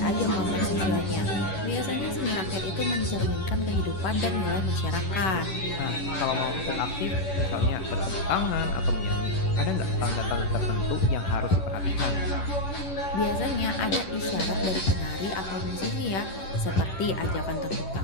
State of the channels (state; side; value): late; right; 11 ms